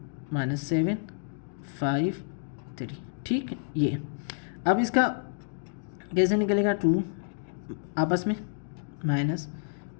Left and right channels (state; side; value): silent; right; digital silence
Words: -7 5 3, ठीक है। ये अब इसका कैसे निकलेगा, 2 आपस में